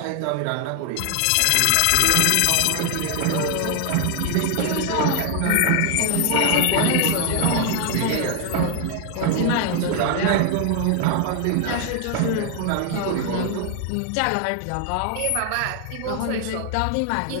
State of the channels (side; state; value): both; different; correlation 0.00